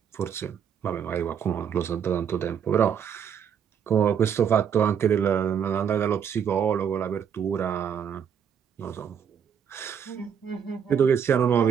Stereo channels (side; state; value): left; quieter; 7.8 dB